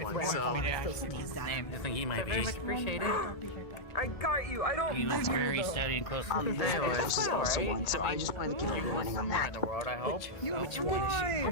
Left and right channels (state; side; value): late; right; 1.7 ms